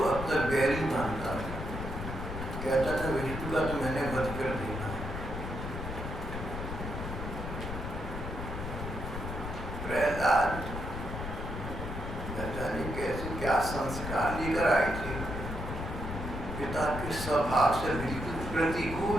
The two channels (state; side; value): noise; left; rumble, 6 dB below the sound